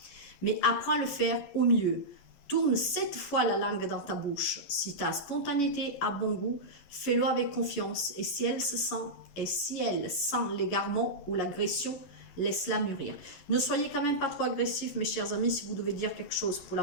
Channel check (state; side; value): late; right; 11 ms